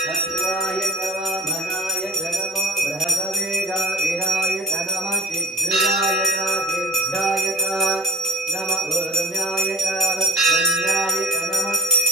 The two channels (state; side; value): normal; both; correlation 0.37